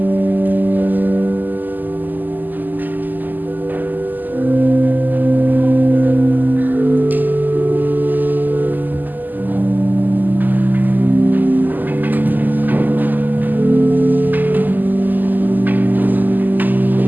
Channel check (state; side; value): late; left; 0.086 ms